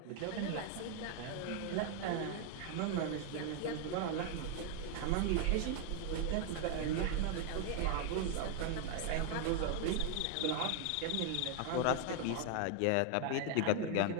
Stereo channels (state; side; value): different; both; correlation 0.00